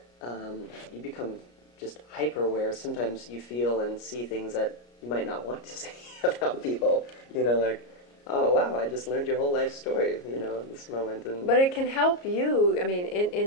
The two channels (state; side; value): late; right; 34 ms